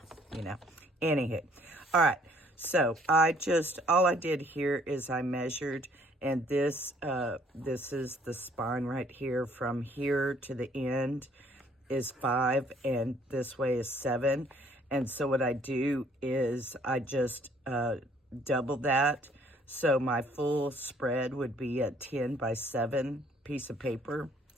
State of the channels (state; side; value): normal; both; correlation 0.61